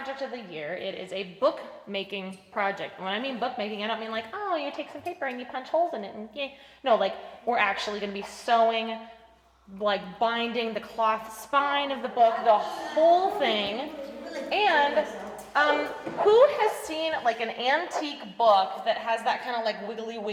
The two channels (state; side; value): identical; both; correlation 1.00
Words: of the year. It is a book making project. When I mean book making, I don't mean like, oh, you take some paper and you punch holes in it and yay. No, like we're actually going to be sewing, like binding the cloth spine of the book, the whole thing. And who has seen like an antique book that has that kind of like wiggly